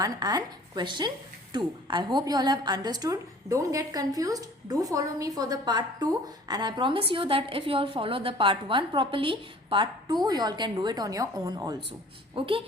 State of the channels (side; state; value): both; normal; correlation 0.50